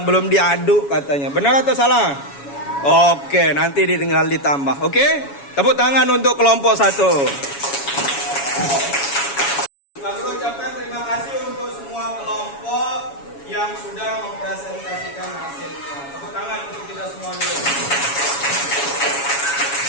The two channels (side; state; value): right; late; 7.2 ms